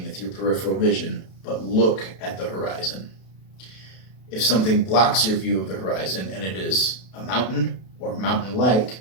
with your peripheral vision, but look at the horizon. If something blocks your view of the horizon and it is a mountain or mountain-like,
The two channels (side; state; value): right; late; 32 ms